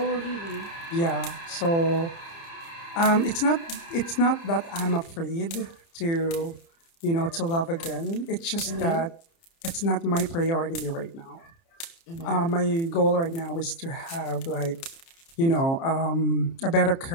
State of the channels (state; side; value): late; right; 30 ms